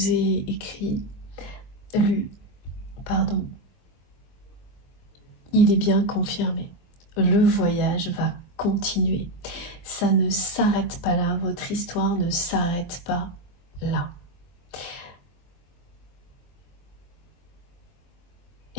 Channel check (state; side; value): late; right; 23 ms